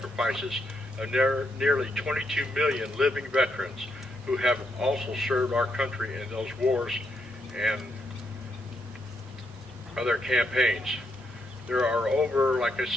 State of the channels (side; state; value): both; normal; correlation 0.79